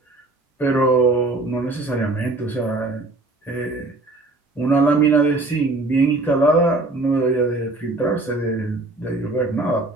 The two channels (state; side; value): quieter; left; 3.0 dB